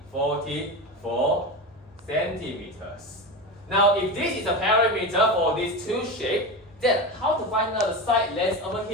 44 centimeters. Now, if this is a perimeter for these two shapes, then how to find out the side length over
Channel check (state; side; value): normal; both; correlation 0.22